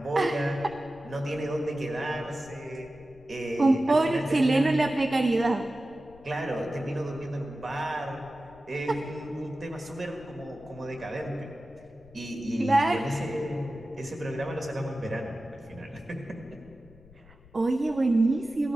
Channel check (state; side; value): noise; left; rumble, 24 dB below the sound